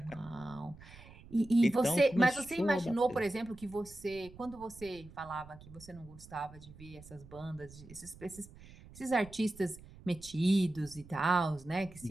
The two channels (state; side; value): noise; right; rumble, 19 dB below the sound